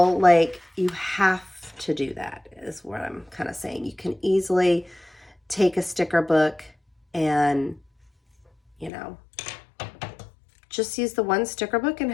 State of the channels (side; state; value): right; drops out; at 8.9 s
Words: like you have to do that, is what I'm kind of saying. You can easily take a sticker book and, you know, just use the one sticker book and